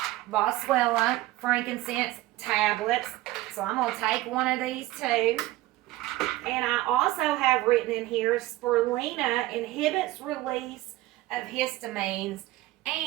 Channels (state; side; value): quieter; left; 17.1 dB